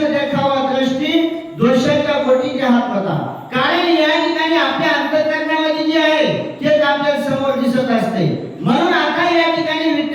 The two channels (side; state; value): both; identical; correlation 1.00